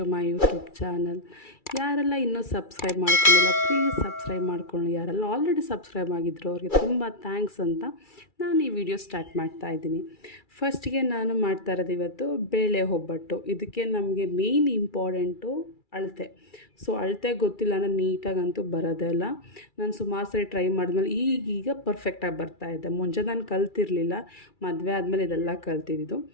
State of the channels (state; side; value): late; right; 2.3 ms